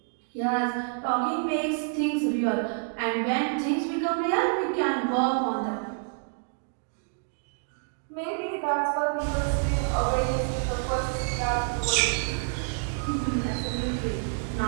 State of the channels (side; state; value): left; silent; 58 dB below the other